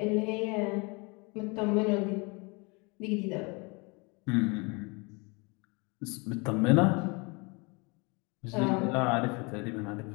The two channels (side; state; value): right; quieter; 29.3 dB